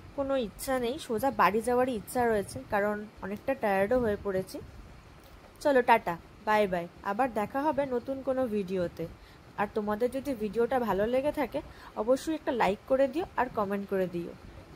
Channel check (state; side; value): identical; both; correlation 1.00